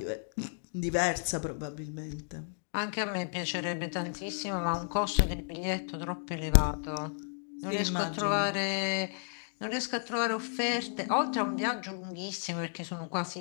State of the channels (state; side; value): silent; right; digital silence